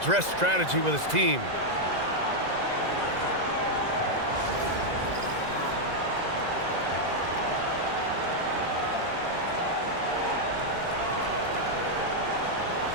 strategy with his team.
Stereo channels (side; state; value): left; late; 2.0 ms